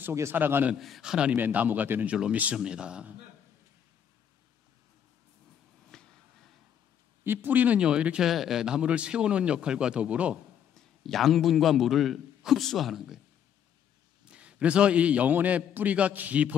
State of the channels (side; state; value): right; quieter; 8.8 dB